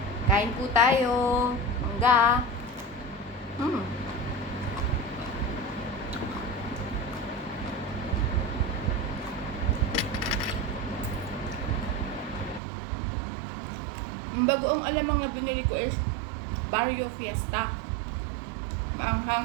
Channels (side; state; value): left; drops out; at 12.6 s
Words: Kain po tayo. Mangga. Ang bagoong alamang na binili ko is Barrio Fiesta.